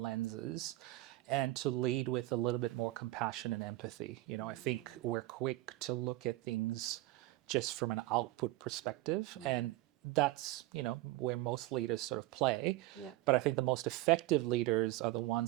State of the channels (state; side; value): quieter; left; 18.2 dB